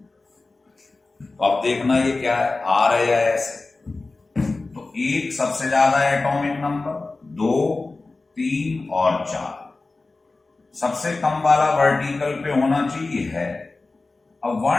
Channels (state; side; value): quieter; right; 3.5 dB